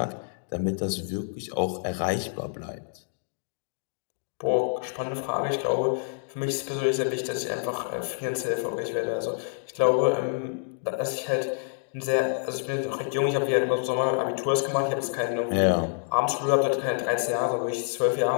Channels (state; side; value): silent; right; digital silence